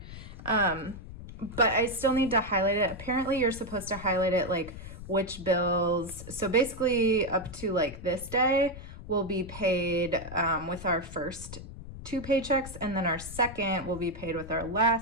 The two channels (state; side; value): noise; left; rumble, 13 dB below the sound